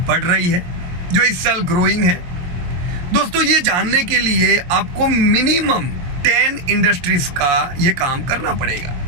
बढ़ रही है, जो इस साल ग्रोइंग है? दोस्तों, ये जानने के लिए आपको मिनिमम 10 इंडस्ट्रीज का ये काम करना पड़ेगा।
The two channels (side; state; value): left; late; 23 ms